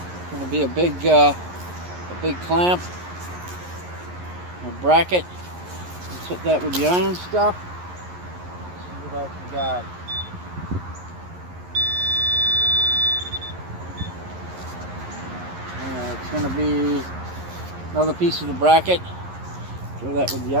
Going to be a big clamp, a bracket. Let's hit that with the iron stuff. Let's see what else we got. It's going to be another piece of the bracket. Throw that with the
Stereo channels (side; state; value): left; late; 11 ms